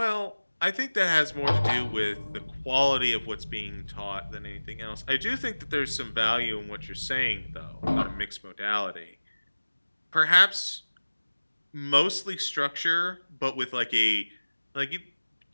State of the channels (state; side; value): inverted; both; correlation -1.00